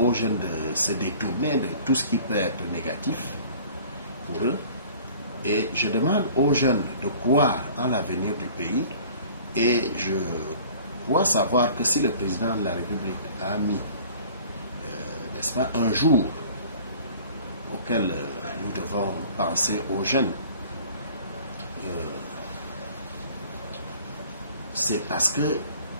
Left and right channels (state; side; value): inverted; both; correlation -0.48